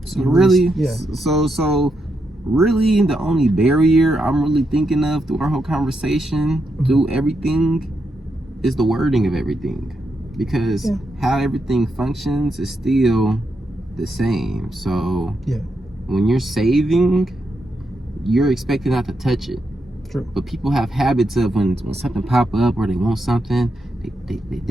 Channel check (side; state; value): both; normal; correlation 0.83